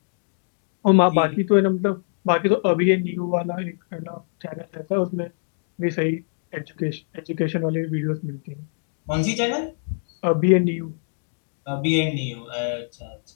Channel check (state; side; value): silent; right; digital silence